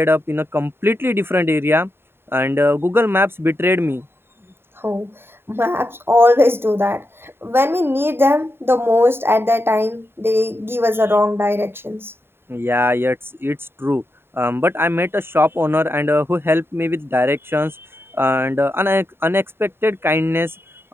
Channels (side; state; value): left; late; 0.11 ms